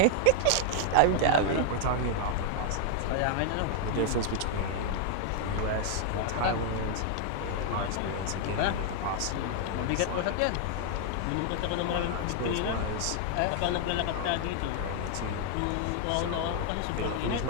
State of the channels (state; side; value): different; both; correlation -0.01